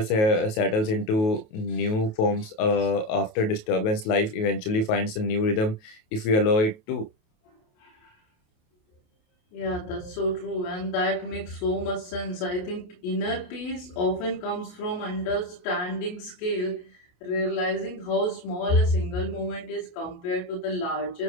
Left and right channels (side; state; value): right; late; 28 ms